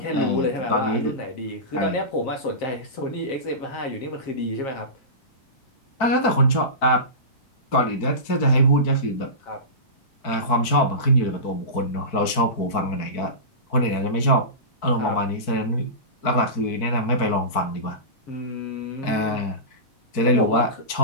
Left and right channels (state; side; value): late; right; 4.6 ms